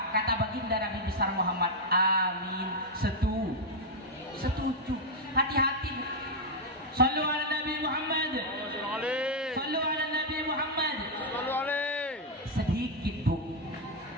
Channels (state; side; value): normal; both; correlation -0.01